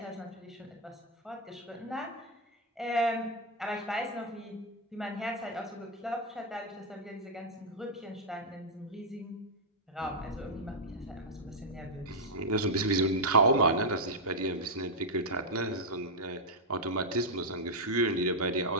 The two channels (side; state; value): both; normal; correlation -0.03